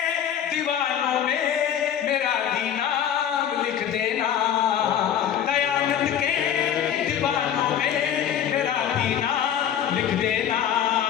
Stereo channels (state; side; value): quieter; right; 9.6 dB